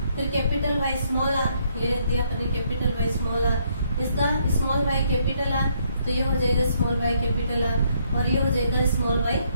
फिर कैपिटल वाई स्मॉल आर, ये लिख दिया अपन ने कैपिटल वाई स्मॉल आर। इसका स्मॉल वाई कैपिटल आर, तो ये हो जाएगा स्मॉल वाई कैपिटल आर, और ये हो जाएगा स्मॉल वाई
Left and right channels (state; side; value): inverted; both; correlation -0.71